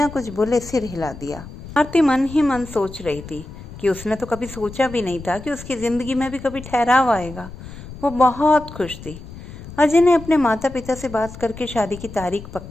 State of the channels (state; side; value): noise; left; rumble, 14 dB below the sound